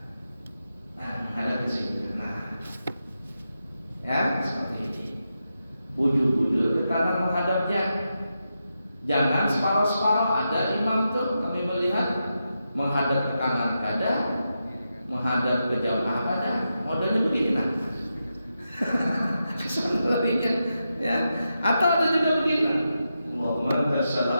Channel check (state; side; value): inverted; both; correlation -0.87